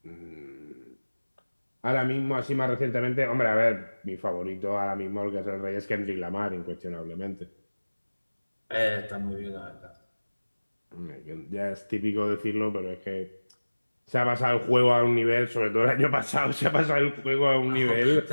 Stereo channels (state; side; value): inverted; both; correlation -1.00